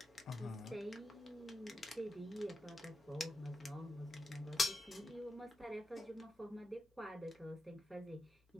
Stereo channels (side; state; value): both; normal; correlation 0.89